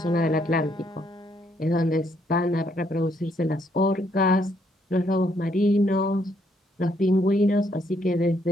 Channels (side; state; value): both; normal; correlation 0.72